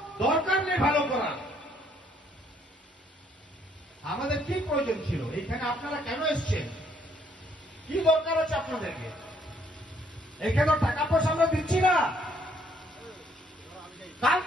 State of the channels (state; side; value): normal; both; correlation 0.67